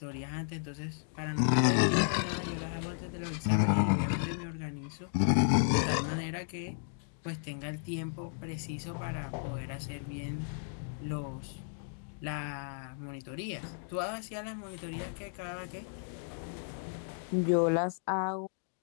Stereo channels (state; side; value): silent; right; digital silence